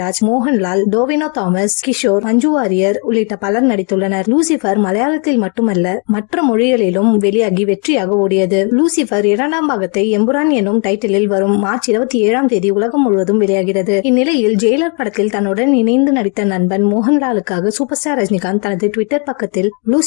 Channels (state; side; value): quieter; right; 37.4 dB